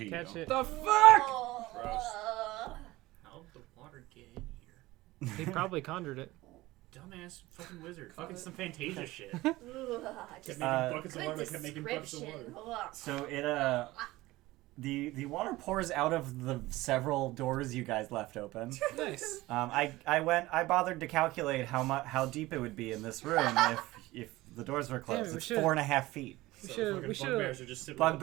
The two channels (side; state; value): left; quieter; 18.7 dB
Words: you. Catch it. The fuck? Oh, Gross. How'd the water get in here? He probably conjured it. Dumbass fucking wizard. Fucking some Fantasia shit. ugh, Kept just making buckets of good water, kept making buckets of description. water. Ugh. So it the water pours out of the several doors you guys left open. Nice. I bothered to calculate how deep it would be in this room if the doors were closed. we It's should- 4.5 feet. We So should. fucking We should. bugbears are just sitting